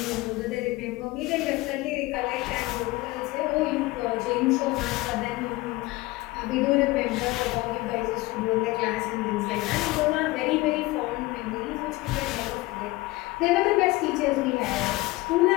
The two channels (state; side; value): quieter; right; 20.4 dB